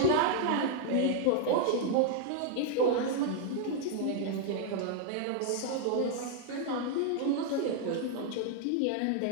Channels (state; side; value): different; both; correlation 0.00